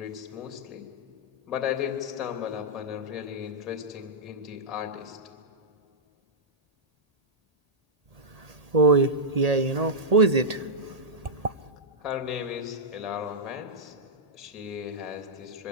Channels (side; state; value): left; late; 1.8 ms